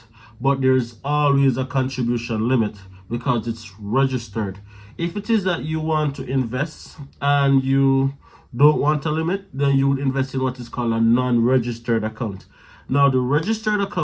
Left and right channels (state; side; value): identical; both; correlation 1.00